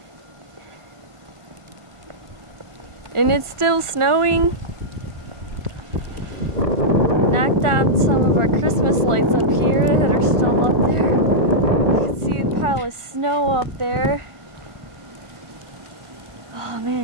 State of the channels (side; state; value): left; late; 1.5 ms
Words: And it's still snowing. Knocked down some of our Christmas lights up here that are still up there. You can see a pile of snow up there. Oh